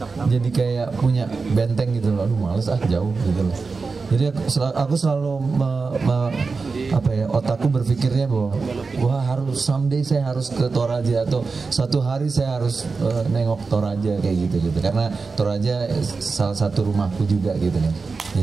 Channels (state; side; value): quieter; left; 4.4 dB